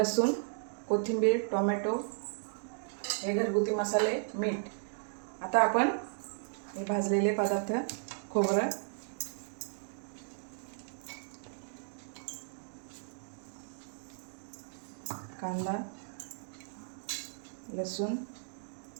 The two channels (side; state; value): left; silent; digital silence